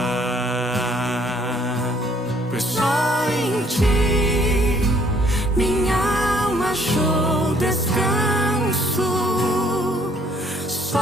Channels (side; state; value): both; normal; correlation 0.63